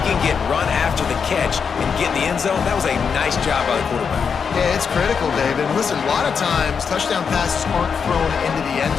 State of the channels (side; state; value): right; quieter; 6.3 dB